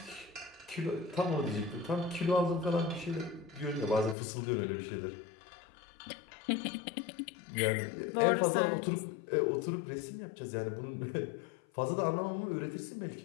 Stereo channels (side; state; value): right; drops out; at 4.2 s